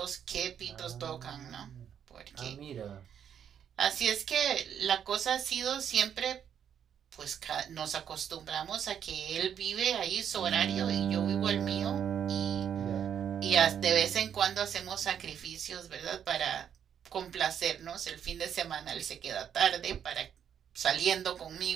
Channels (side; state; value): left; quieter; 8.7 dB